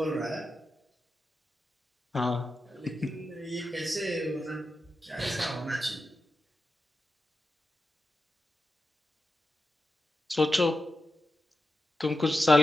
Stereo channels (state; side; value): normal; both; correlation 0.90